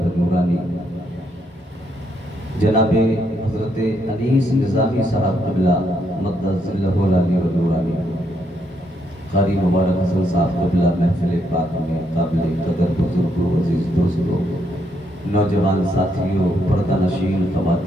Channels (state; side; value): normal; both; correlation 0.76